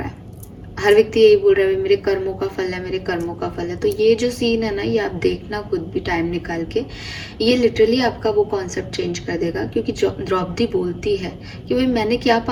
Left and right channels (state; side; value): identical; both; correlation 1.00